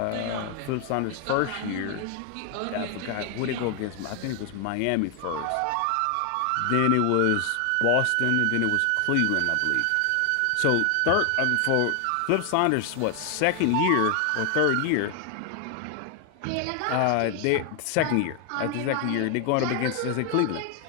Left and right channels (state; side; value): different; both; correlation 0.00